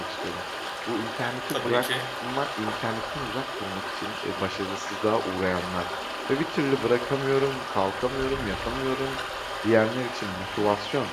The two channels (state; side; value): identical; both; correlation 1.00